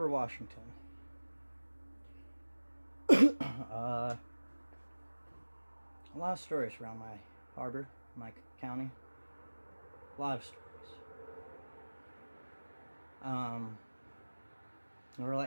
Washington. A lot of stories around my harbor, my county. A lot of stories. Um, we're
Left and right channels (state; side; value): inverted; both; correlation -1.00